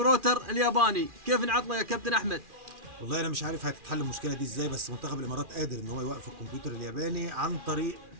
الياباني. كيف نعطله يا كابتن أحمد؟ والله انا مش عارف هتتحل المشكله دي ازاي، بس منتخب الامارات قادر ان هو يوقف الكمبيوتر الياباني عن طريق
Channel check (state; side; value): late; left; 2.4 ms